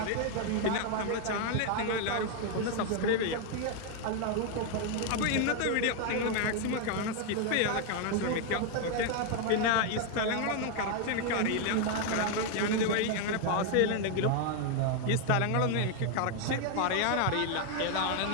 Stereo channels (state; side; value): different; both; correlation 0.01